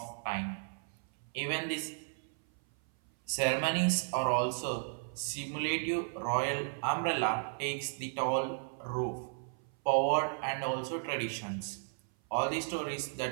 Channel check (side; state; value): left; silent; 55 dB below the other